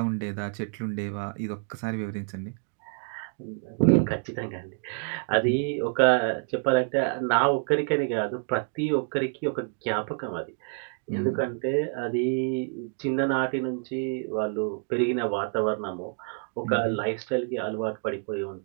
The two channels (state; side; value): silent; left; 59 dB below the other